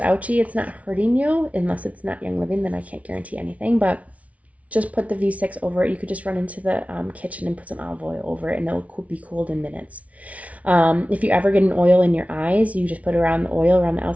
it's not hurting you, unless it's not Young Living, then I can't guarantee anything, but just put the V6 over it. You could just run into the kitchen and put some olive oil over it, and it'll be cooled in minutes. If you ever get an oil in your eyes, you just put around the oil around the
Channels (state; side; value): late; left; 0.067 ms